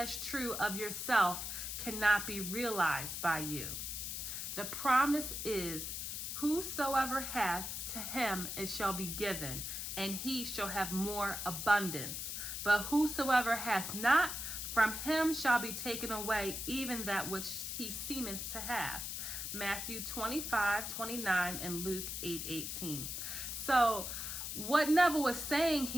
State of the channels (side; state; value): left; noise; hiss, 4 dB below the sound